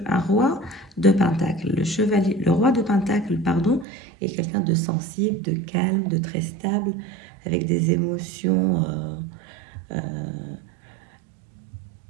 roi de pentacle. Le roi de pentacle, pardon, est quelqu'un de sensible, de calme, de très stable, avec des émotions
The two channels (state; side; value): drops out; left; at 3.9 s